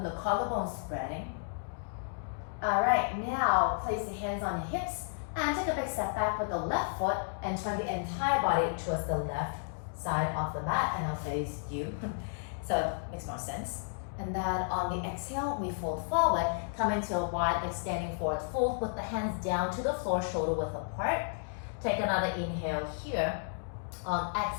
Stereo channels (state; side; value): silent; right; digital silence